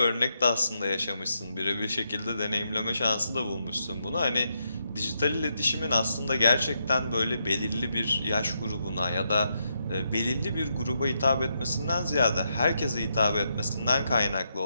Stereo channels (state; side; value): inverted; both; correlation -0.81